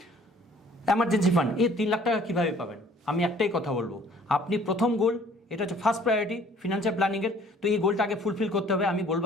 Emergency fund. এই 3 লাখ টাকা কীভাবে পাবেন? আমি একটাই কথা বলবো, আপনি প্রথম গোল, এটা হচ্ছে ফার্স্ট প্রায়োরিটি ফিনান্সিয়াল প্ল্যানিংয়ের। তো এই গোলটা আগে ফুলফিল করতে হবে। আমি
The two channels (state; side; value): normal; both; correlation 0.56